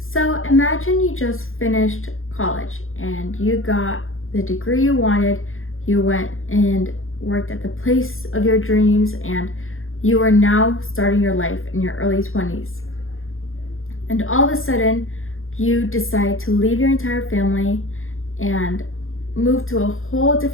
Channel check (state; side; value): late; right; 0.60 ms